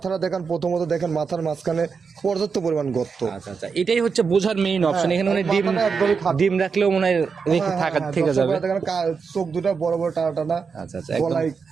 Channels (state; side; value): quieter; left; 5.5 dB